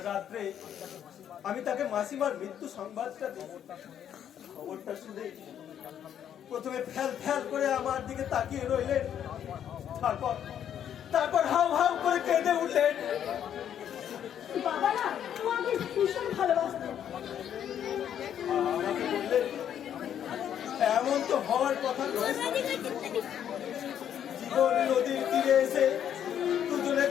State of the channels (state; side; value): quieter; right; 9.6 dB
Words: রাত্রে আমি তাকে মাসিমার মৃত্যু সংবাদটা দিই। খবরটা শুনে প্রথমে ফ্যাল ফ্যাল করে আমার দিকে তাকিয়ে রইলেন, তারপর হাউ হাউ করে কেঁদে উঠলেন। বাবা না তোমাকে ভীষণ ভালোবাসতেন। আমাকে বললেন, এমন তো হওয়ার কথা নয়। জীবন নদীর তীরে এসে দুজনে